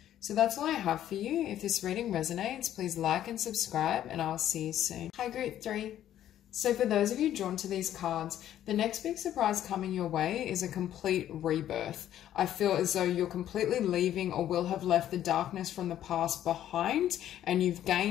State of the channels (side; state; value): right; quieter; 11.6 dB